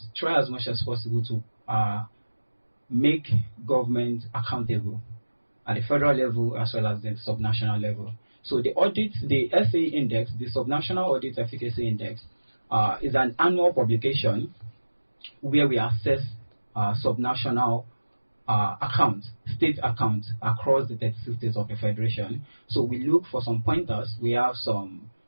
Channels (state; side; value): inverted; both; correlation -1.00